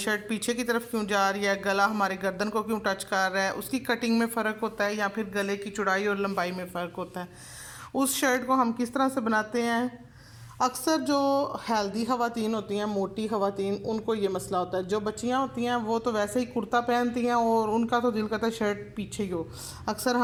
पीछे की तरफ क्यों जा रही है, गला हमारे गर्दन को क्यों टच कर रहा है, उसकी कटिंग में फ़र्क होता है या फिर गले की चौड़ाई और लंबाई में फ़र्क होता है। उस शर्ट को हम किस तरह से बनाते हैं। अक्सर जो हेल्दी ख़वातीन होती हैं, मोटी ख़वातीन, उनको ये मसला होता है। जो बच्चियां होती हैं वो तो वैसे ही कुर्ता पहनती हैं और उनका तो दिल करता है शर्ट पीछे ही हो। अक्सर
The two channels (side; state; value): both; identical; correlation 1.00